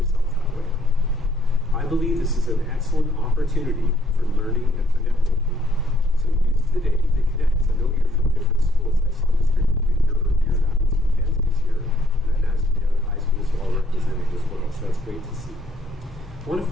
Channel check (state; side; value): normal; both; correlation 0.66